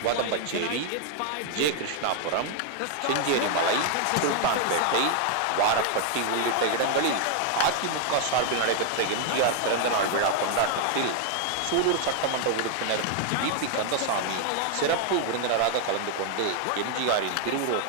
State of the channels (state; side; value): different; both; correlation 0.00